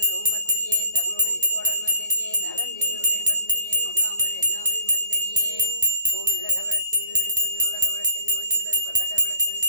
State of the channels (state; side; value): inverted; both; correlation -0.49